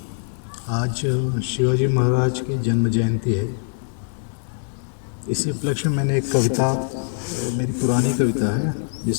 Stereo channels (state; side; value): silent; right; 64 dB below the other